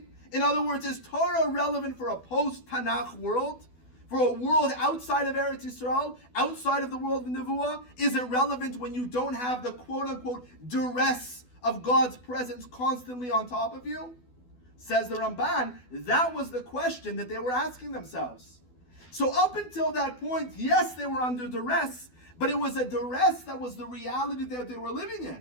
In other words, is Torah relevant for a post-Tanakh world? For a world outside of Eretz Yisrael, outside of the world of Nevuah? Is it relevant when you don't have the quote-unquote duress of God's presence constantly on top of you? Says the Ramban, that was the question that they were asking themselves. So up until that point, yes, they were under duress, but it was a duress that was the reality that they were living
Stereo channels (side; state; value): right; late; 12 ms